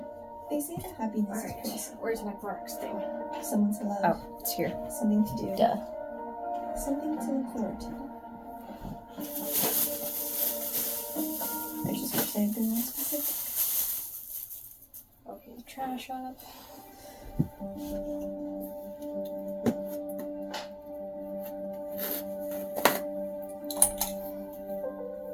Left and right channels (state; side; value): identical; both; correlation 1.00